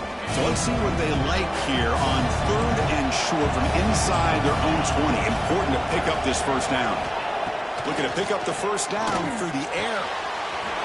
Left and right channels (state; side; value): identical; both; correlation 1.00